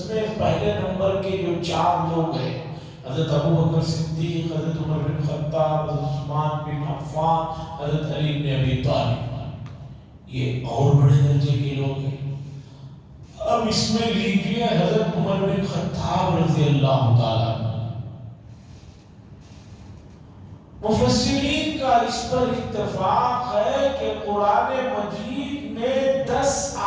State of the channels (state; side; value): identical; both; correlation 1.00